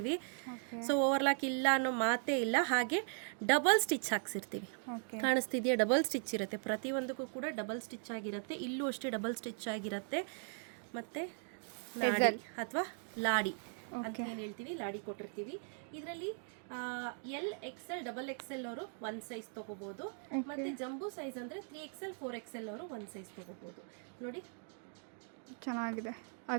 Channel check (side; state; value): left; silent; 52 dB below the other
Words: ಸೊ ಓವರ್ಲಾಕ್ ಇಲ್ಲ ಅನ್ನೋ ಮಾತೇ ಇಲ್ಲ. ಹಾಗೆ ಡಬಲ್ ಸ್ಟಿಚ್ ಹಾಕ್ಸಿರ್ತೀವಿ. ಕಾಣಿಸ್ತಿದೆಯಾ? ಡಬಲ್ ಸ್ಟಿಚ್ ಇರುತ್ತೆ. ಪ್ರತಿಯೊಂದಕ್ಕೂ ಕೂಡ ಡಬಲ್ ಸ್ಟಿಚ್ ಆಗಿರುತ್ತೆ. ಇಲ್ಲೂ ಅಷ್ಟೇ ಡಬಲ್ ಸ್ಟಿಚ್ ಆಗಿರುತ್ತೆ. ಮತ್ತೆ ಅಥವಾ ಲಾಡಿ ಅಂತ ಏನ್ ಹೇಳ್ತೀವಿ, ಲಾಡಿ ಕೊಟ್ಟಿರ್ತೀವಿ. ಇದರಲ್ಲಿ XL, XXL ಅವರು ಒಂದ್ ಸೈಜ್ ತಗೋಬಹುದು. ಮತ್ತೆ ಜಂಬೂ ಸೈಜ್ ಅಂದ್ರೆ 3XL, 4XL ಅವರು ಒಂದ್ ಸೈಜ್ ತಗೋಬಹುದು. ನೋಡಿ, ಚೆನ್ನಾಗಿದೆ.